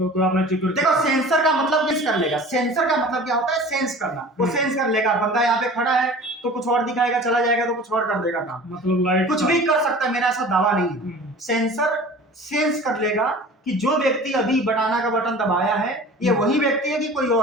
आपने जिक्र देखो सेंसर का मतलब किस कर लेगा, सेंसर का मतलब क्या होता है, सेंस करना। वो सेंस कर लेगा, बंदा यहाँ पे खड़ा है तो कुछ और दिखाएगा, चला जाएगा तो कुछ और कर देगा काम, मतलब लाइट कुछ भी कर सकता है, मेरा ऐसा दावा नहीं है। सेंसर सेंस कर लेगा कि जो व्यक्ति अभी बनाना का बटन दबाया है ये वही व्यक्ति है कि कोई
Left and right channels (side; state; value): both; normal; correlation 0.42